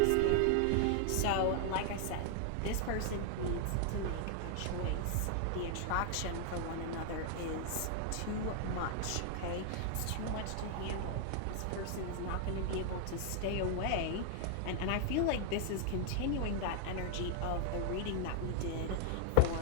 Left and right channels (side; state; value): both; different; correlation 0.00